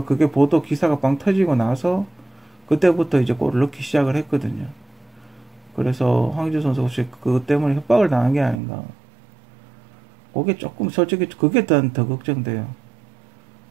그게 보도 기사가 빵 터지고 나서 그때부터 이제 골을 넣기 시작을 했거든요. 그래서 황의조 선수가 혹시 그것 때문에 협박을 당한 게 아닌가. 그게 조금 솔직히 그게 더 걱정돼요.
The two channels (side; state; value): left; drops out; at 8.6 s